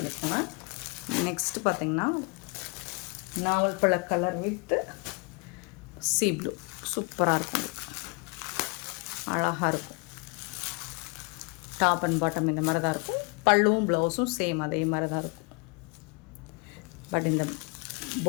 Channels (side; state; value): right; quieter; 32.2 dB